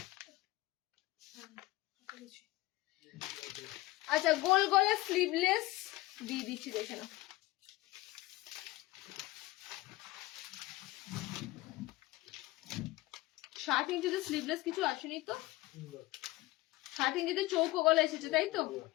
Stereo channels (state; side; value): quieter; right; 19.1 dB